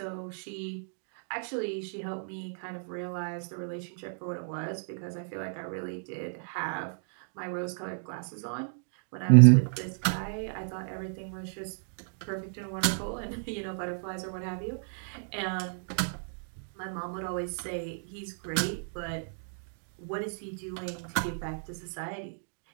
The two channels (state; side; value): silent; left; digital silence